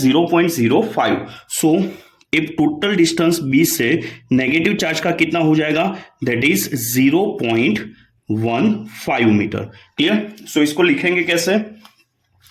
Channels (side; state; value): both; identical; correlation 1.00